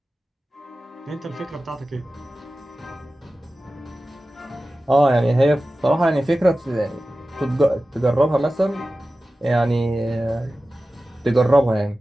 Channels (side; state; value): both; normal; correlation 0.95